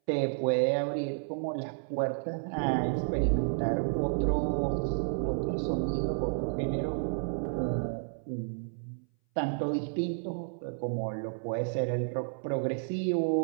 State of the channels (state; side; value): silent; left; 57 dB below the other